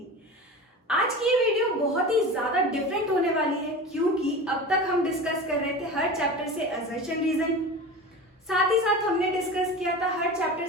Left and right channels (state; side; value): normal; both; correlation 0.32